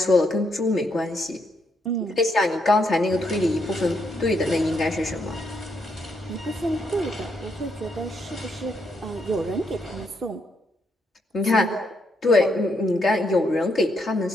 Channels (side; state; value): both; normal; correlation 0.77